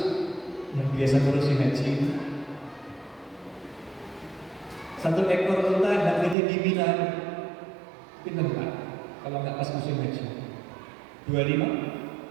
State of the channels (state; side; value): drops out; left; at 6.4 s